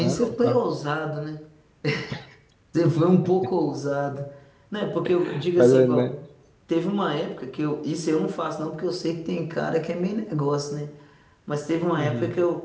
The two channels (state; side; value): identical; both; correlation 1.00